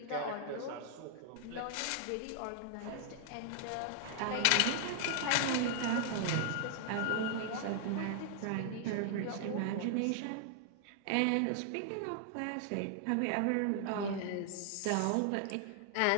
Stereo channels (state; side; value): different; both; correlation 0.00